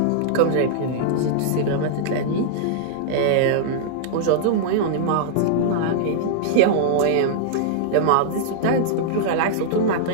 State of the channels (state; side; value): different; both; correlation -0.02